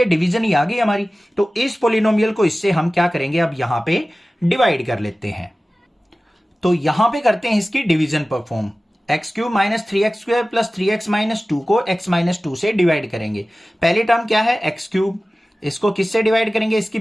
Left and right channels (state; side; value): normal; both; correlation 0.96